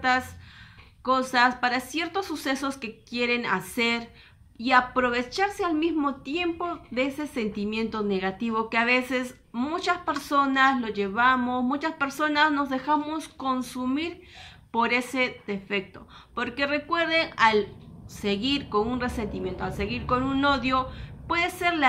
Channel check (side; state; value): both; identical; correlation 1.00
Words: cosas, para ciertos sucesos que quieren hacer, y aprovecharse al mismo tiempo de ese sentimiento negativo que a veces muchas personas lo llevamos, muchas personas nos dejamos consumir por ese defecto. Porque recuerden, al seguir con un resentimiento, al seguir con un odio, puede ser